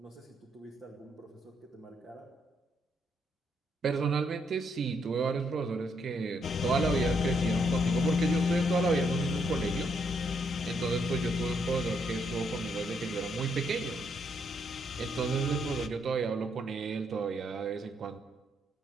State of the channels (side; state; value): both; normal; correlation 0.74